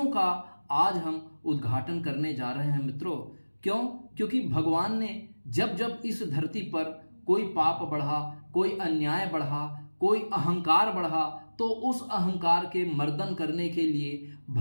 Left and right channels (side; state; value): both; inverted; correlation -1.00